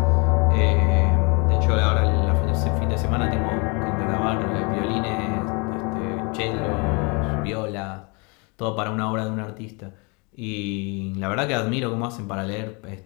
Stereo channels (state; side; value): quieter; right; 31.1 dB